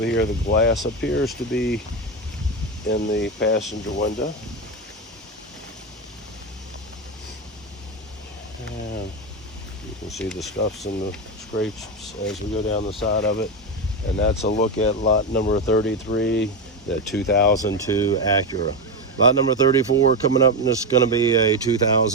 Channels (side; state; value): both; normal; correlation 0.12